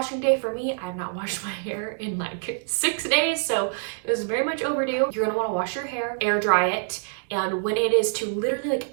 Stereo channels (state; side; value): silent; left; digital silence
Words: day for me. I have not washed my hair in like 6 days, so it is very much overdue. You're gonna wanna wash your hair, air dry it, and when it is to literally